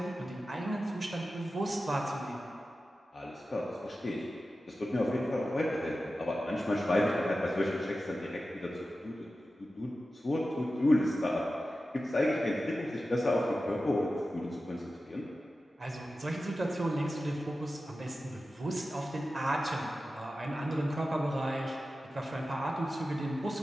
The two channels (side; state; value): both; normal; correlation 0.93